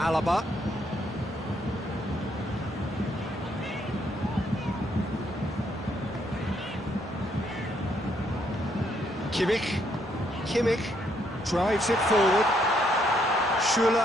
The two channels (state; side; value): normal; both; correlation 0.72